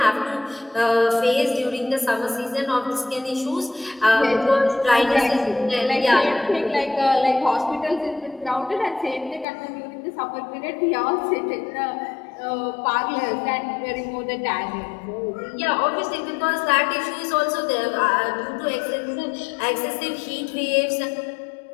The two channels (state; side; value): drops out; right; at 9.5 s